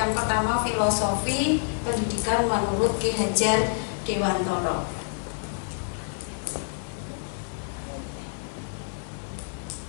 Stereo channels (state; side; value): silent; right; 60 dB below the other